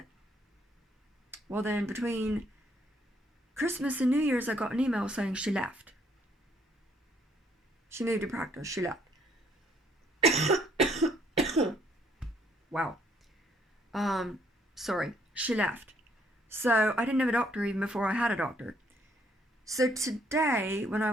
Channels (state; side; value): normal; both; correlation 0.67